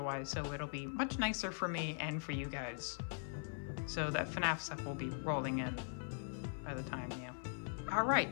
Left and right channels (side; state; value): right; silent; 50 dB below the other